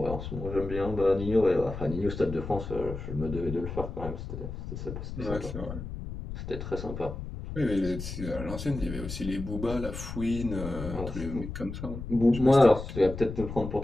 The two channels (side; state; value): left; noise; rumble, 8 dB below the sound